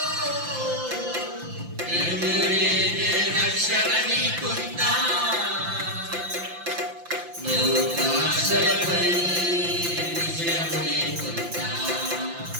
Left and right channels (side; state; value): left; late; 5.8 ms